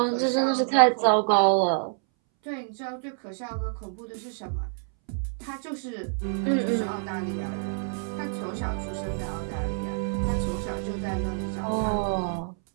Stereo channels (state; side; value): silent; left; 60 dB below the other